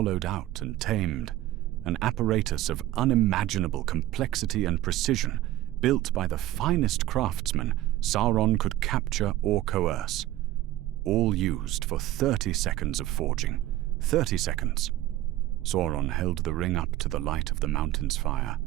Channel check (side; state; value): left; quieter; 15.1 dB